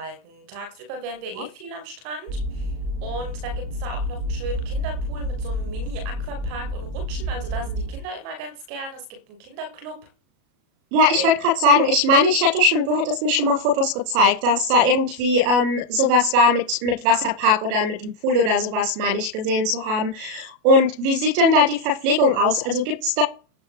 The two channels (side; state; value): left; late; 37 ms